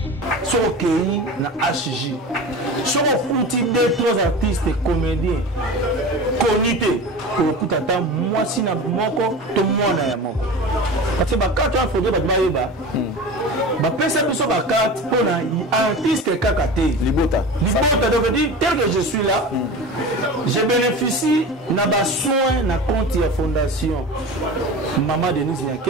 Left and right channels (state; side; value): normal; both; correlation 0.32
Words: so kei na HJ so futi deux trois artistes et comédiens connus pour tata moi si na moko to mwana ya moko parce que ba carte ya photo ba bayeba ba pesa biso ba carte pour na artiste kakate libota donc dire tel que je suis là je bénéficie na ba soin na compte ya fondation Maman Denise